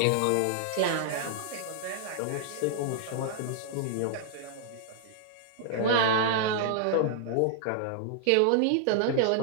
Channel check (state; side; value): different; both; correlation -0.01